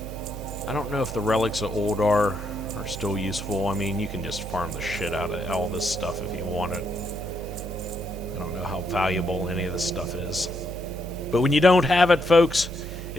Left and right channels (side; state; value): right; noise; hum, 9 dB below the sound